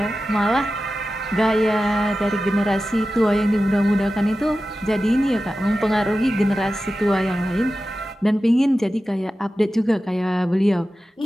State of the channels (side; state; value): both; normal; correlation 0.94